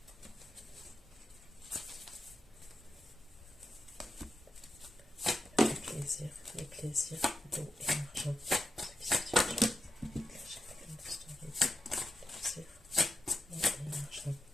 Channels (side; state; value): both; normal; correlation 0.88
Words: Les plaisirs, d'eau et argent.